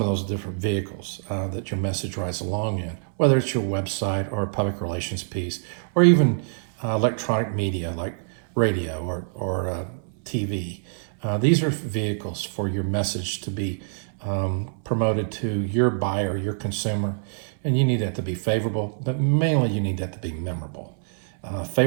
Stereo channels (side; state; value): left; silent; 62 dB below the other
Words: of those different vehicles that your message rides along in, whether it's your website or a public relations piece, or even electronic media like radio or TV. These are vehicles for your message to be promoted to your buyer, your consumer, and you need that to be favorable, but mainly you need that to be memorable.